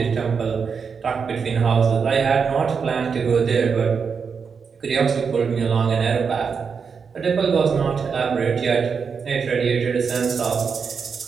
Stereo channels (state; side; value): quieter; left; 5.9 dB